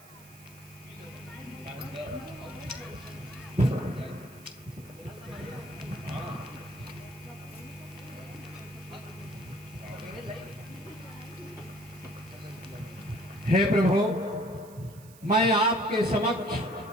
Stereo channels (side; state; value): right; noise; hiss, 22 dB below the sound